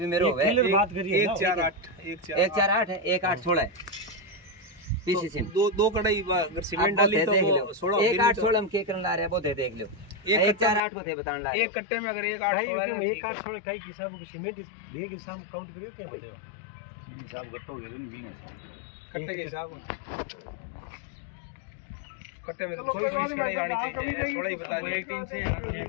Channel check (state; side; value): drops out; right; at 10.8 s